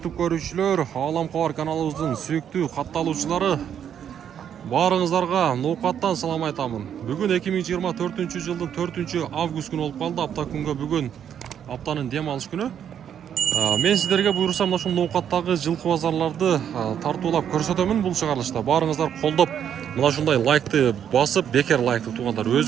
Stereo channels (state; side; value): quieter; left; 9.0 dB